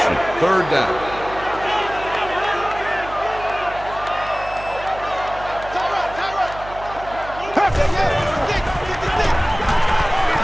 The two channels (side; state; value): right; noise; hum, 15 dB below the sound